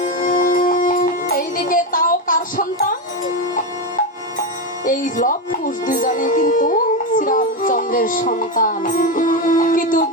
এইদিকে তাও কার সন্তান? এই লব কুশ দুজনে কিন্তু শ্রীরামচন্দ্রের সন্তান। কিন্তু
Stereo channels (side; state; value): both; normal; correlation 0.12